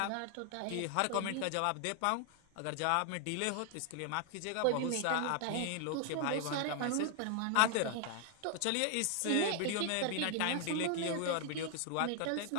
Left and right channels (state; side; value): different; both; correlation 0.00